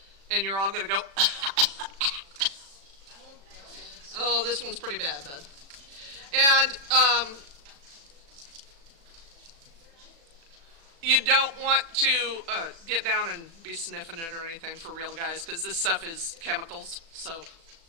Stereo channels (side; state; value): left; late; 36 ms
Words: and you're all going to go oh, this one's pretty bad, bud. And you don't want to get down and be sniffing it or anything, for real, guys, because this stuff is chemicals, so